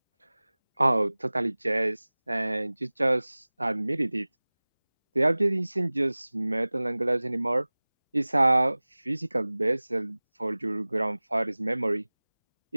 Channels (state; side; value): inverted; both; correlation -1.00